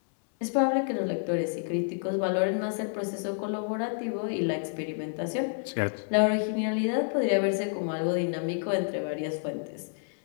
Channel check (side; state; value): right; silent; 59 dB below the other